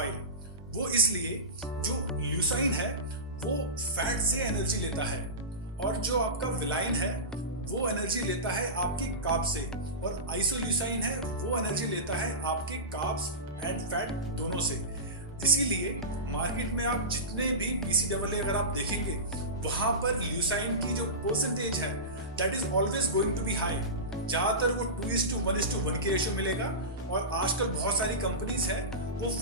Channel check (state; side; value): normal; both; correlation -0.20